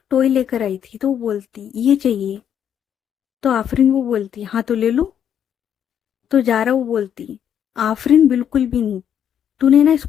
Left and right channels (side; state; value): right; quieter; 9.1 dB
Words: टॉय लेकर आई थी, तो वो बोलती ये चाहिए। तो आफरीन वो बोलती हाँ तो ले लो। तो जारा वो बोलती, आफरीन बिल्कुल भी नहीं, तूने ना